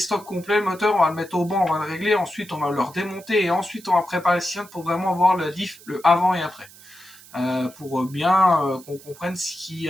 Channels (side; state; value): right; noise; hiss, 21 dB below the sound